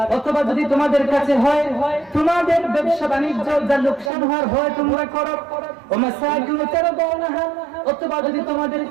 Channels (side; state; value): left; drops out; at 4.1 s